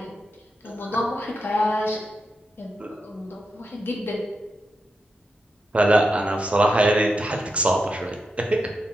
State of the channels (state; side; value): normal; both; correlation 0.86